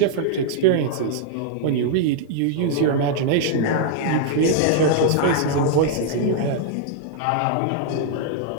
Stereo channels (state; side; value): different; both; correlation -0.01